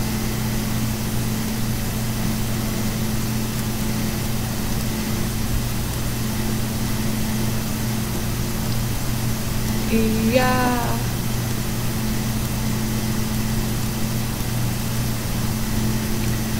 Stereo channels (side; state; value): both; identical; correlation 1.00